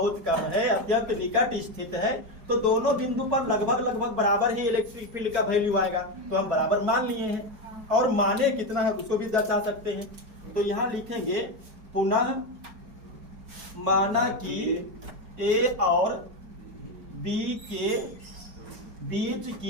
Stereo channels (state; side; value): late; left; 4.8 ms